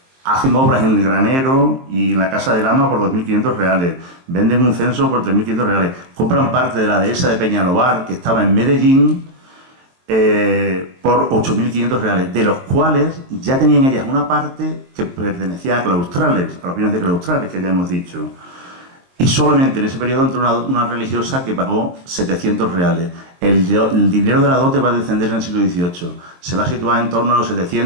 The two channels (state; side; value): late; left; 23 ms